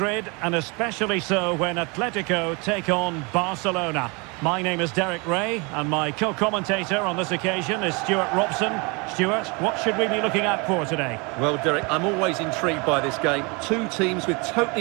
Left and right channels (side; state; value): left; quieter; 29.6 dB